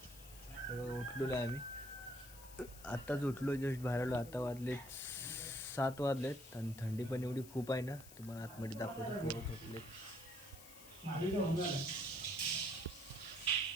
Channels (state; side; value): noise; left; hiss, 17 dB below the sound